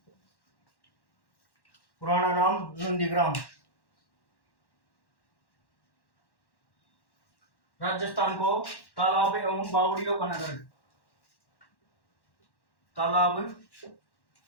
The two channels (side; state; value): right; late; 1.1 ms